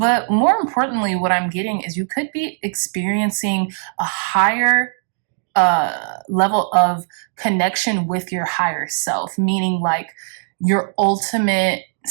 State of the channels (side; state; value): left; silent; digital silence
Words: more importantly, what I'm getting is you could be experiencing a higher level of connection with your higher self, meaning like your ultimate